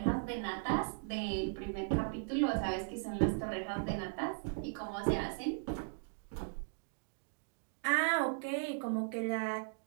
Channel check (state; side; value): silent; left; digital silence